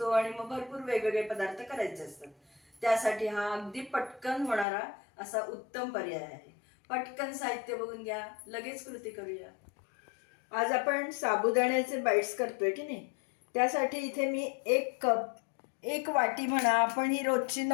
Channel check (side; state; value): right; drops out; at 4.7 s